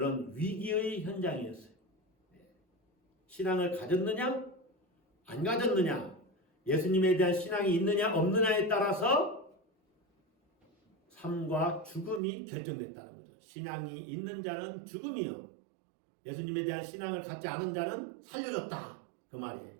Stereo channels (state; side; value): drops out; left; at 12.2 s